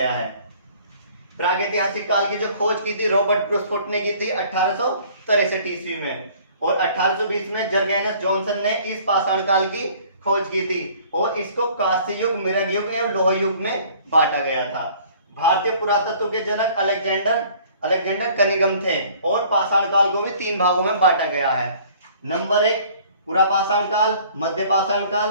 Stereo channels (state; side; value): inverted; both; correlation -0.53